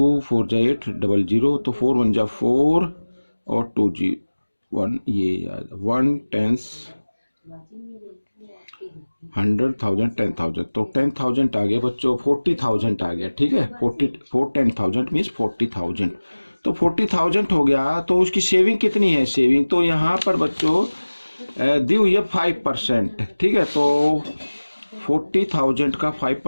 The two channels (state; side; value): inverted; both; correlation -1.00